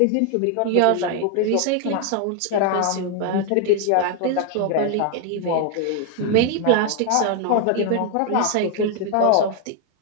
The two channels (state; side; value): different; both; correlation 0.00